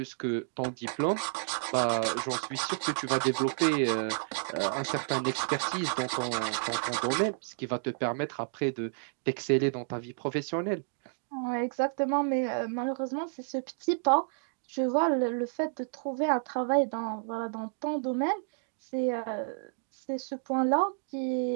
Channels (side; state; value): left; silent; digital silence